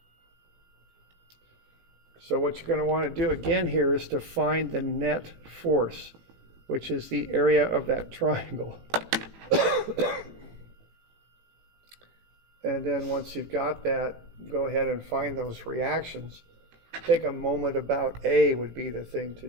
So what you're going to want to do again here is to find the net force, which is the area of that triangle. And then once you've got that, go ahead and find those reactions. Take a moment about A would be the thing to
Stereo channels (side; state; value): left; late; 18 ms